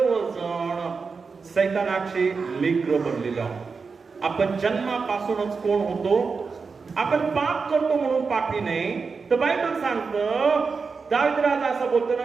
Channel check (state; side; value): quieter; left; 4.9 dB